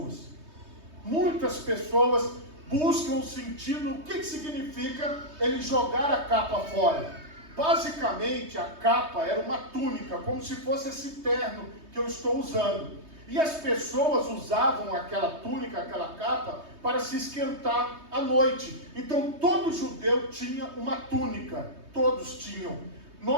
Muitas pessoas buscam o sentido. O que significa ele jogar a capa fora? Basicamente, a capa era uma túnica, como se fosse esse terno que eu estou usando. E as pessoas usavam aquela túnica, aquela capa, para se esquentar à noite. Então, todo judeu tinha uma túnica. Todos tinham.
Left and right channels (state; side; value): late; left; 3.2 ms